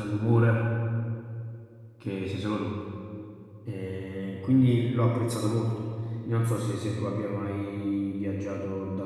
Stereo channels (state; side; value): identical; both; correlation 1.00